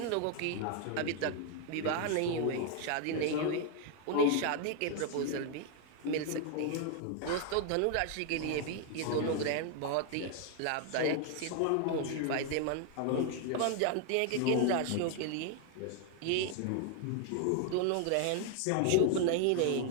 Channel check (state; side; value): different; both; correlation 0.00